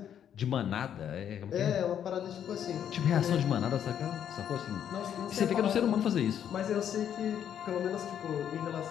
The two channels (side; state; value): right; quieter; 9.4 dB